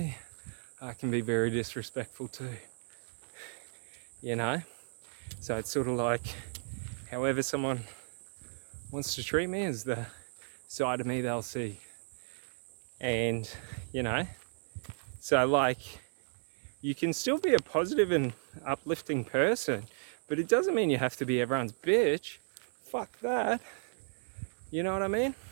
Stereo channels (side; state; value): left; silent; 55 dB below the other